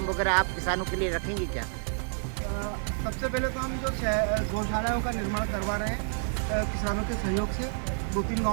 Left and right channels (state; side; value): silent; left; 59 dB below the other